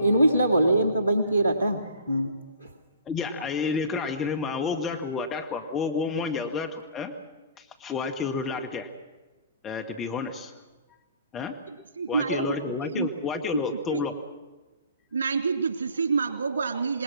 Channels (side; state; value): both; inverted; correlation -0.47